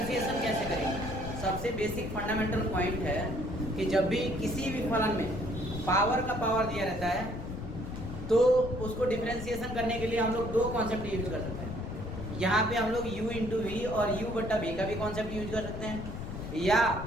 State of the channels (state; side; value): noise; left; rumble, 8 dB below the sound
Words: कैसे करेंगे? सबसे बेसिक फंडामेंटल पॉइंट है कि जब भी किसी भी फलन में पावर का पावर दिया रहता है तो उसको डिफरेंशिएशन करने के लिए हम लोग दो कॉन्सेप्ट यूज कर सकते हैं। यहाँ पे हम लोग u इंटू वी और u बट्टा v का भी कॉन्सेप्ट यूज कर सकते हैं, या